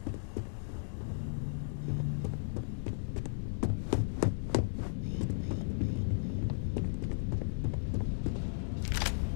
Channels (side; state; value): right; silent; digital silence